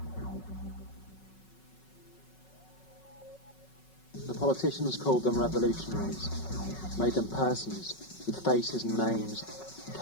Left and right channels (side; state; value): right; late; 5.4 ms